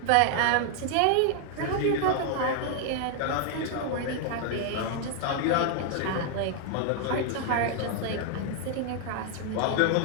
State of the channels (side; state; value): both; different; correlation 0.00